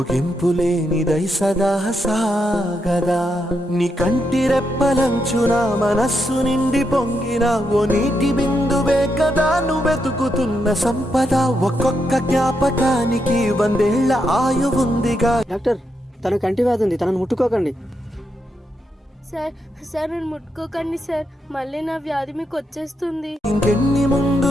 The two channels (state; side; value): normal; both; correlation 0.82